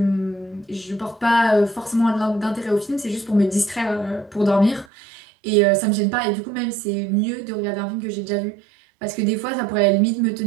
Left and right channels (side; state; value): left; drops out; at 4.9 s